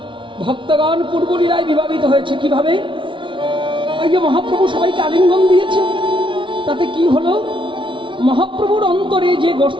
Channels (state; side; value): late; left; 0.24 ms